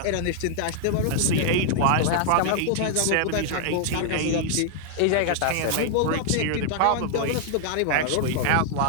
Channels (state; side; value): different; both; correlation 0.00